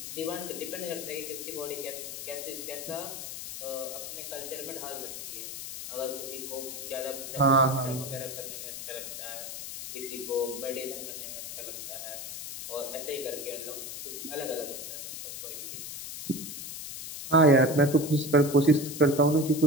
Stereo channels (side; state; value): left; noise; hiss, 8 dB below the sound